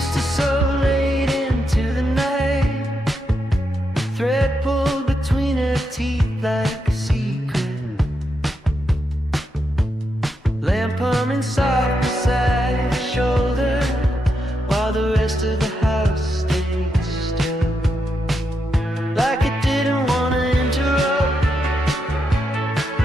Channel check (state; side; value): normal; both; correlation 0.83